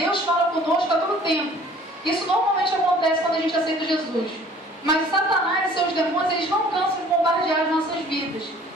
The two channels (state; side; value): normal; both; correlation 0.52